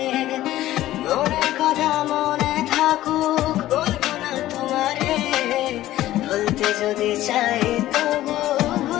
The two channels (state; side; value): quieter; right; 14.7 dB